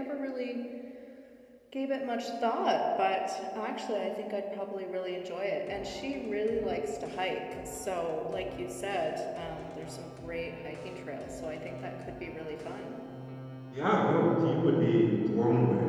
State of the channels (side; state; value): both; identical; correlation 1.00